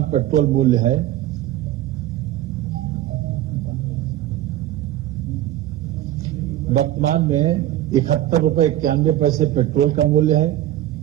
पेट्रोल मूल्य है, वर्तमान में ₹71.91 पेट्रोल का मूल्य है।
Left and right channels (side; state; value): left; quieter; 13.5 dB